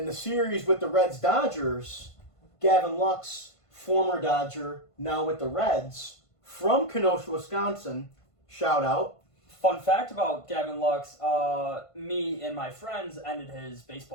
the series with the Reds-Dodgers, Gavin Lux, former Dodger, now with the Reds, from Kenosha, Wisconsin, shout out. Fun fact about Gavin Lux, me and my friends ended his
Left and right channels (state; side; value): late; right; 1.5 ms